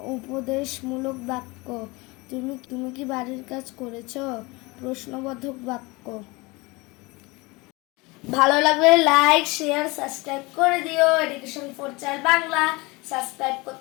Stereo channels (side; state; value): right; quieter; 24.5 dB